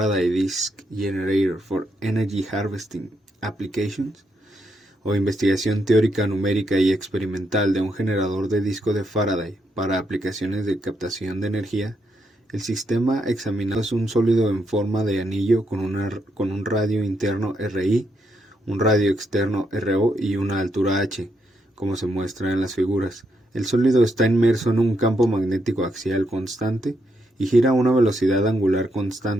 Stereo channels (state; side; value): normal; both; correlation 0.79